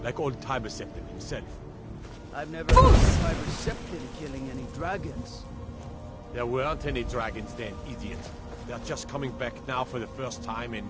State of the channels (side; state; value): both; identical; correlation 1.00